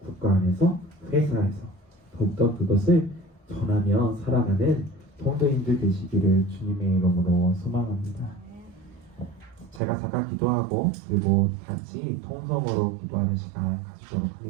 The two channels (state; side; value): drops out; left; at 9.8 s